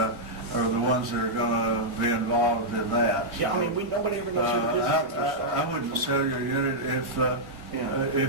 the ones that are going to be involved in that. Yeah, I mean, nobody ever knows who the business interests are. I wouldn't sell you a unit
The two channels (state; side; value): late; left; 1.5 ms